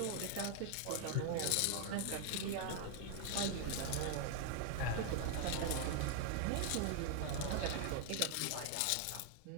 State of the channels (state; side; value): different; both; correlation 0.00